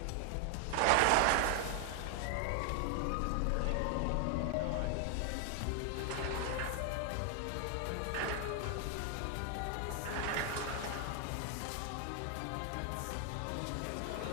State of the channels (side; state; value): both; different; correlation 0.00